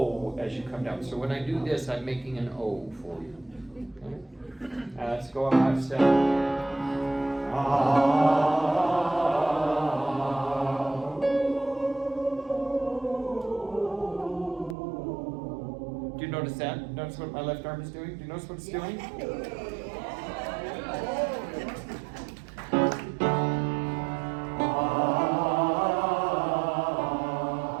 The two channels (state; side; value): drops out; left; at 14.8 s